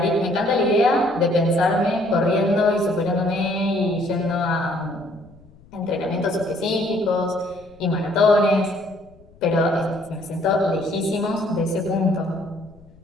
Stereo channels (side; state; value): left; noise; rumble, 27 dB below the sound